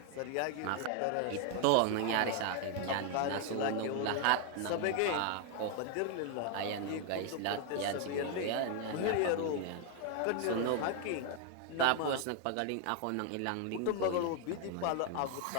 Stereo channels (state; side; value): different; both; correlation 0.01